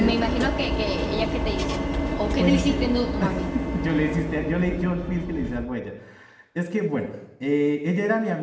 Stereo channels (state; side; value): identical; both; correlation 1.00